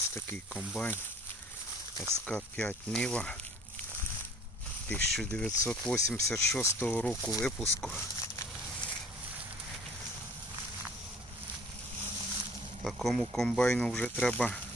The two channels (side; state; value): both; normal; correlation 0.50